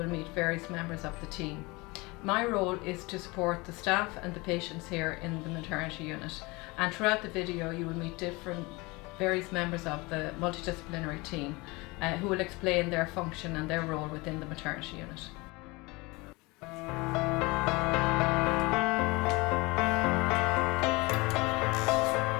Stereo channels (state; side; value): quieter; right; 24.6 dB